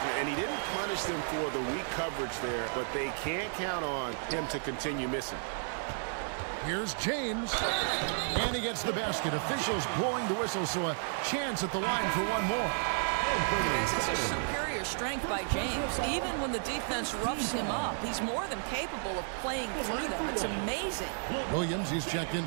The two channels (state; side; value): silent; left; digital silence